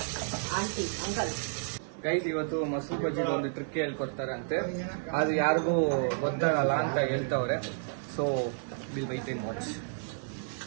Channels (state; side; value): silent; left; digital silence